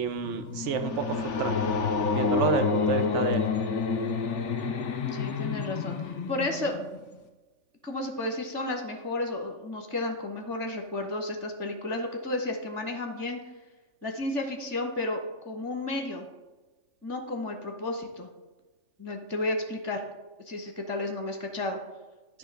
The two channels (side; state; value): left; late; 3.4 ms